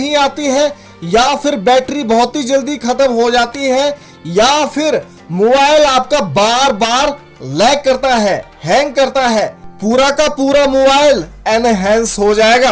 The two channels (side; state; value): both; identical; correlation 1.00